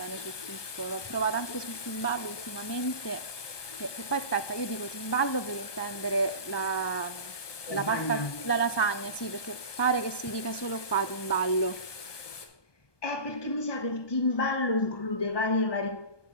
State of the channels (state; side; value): late; right; 1.2 ms